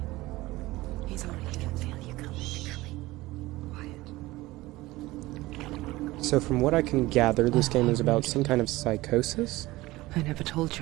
He's already going to feel you coming. Quiet. So from what I can gather, this game is about some kind of psychosis? I never told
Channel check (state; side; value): quieter; left; 19.0 dB